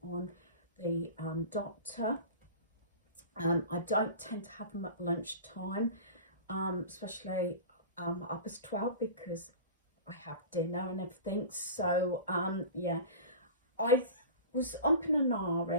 on the doctor. I don't tend to have them at lunchtime. Especially up as 12 because I have dinner and everything. So yeah, I was umping and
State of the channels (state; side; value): inverted; both; correlation -0.35